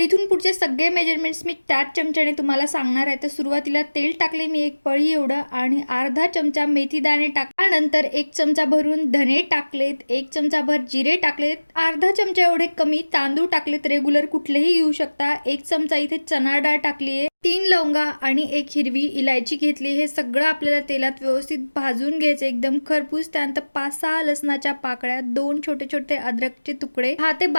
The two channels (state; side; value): inverted; both; correlation -1.00